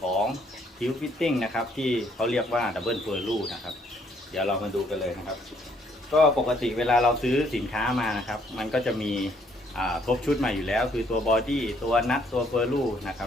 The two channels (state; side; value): normal; both; correlation 0.67